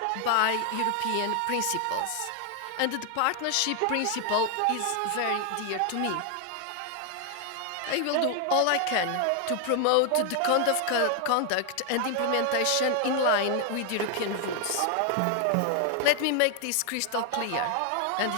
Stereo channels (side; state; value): both; different; correlation 0.00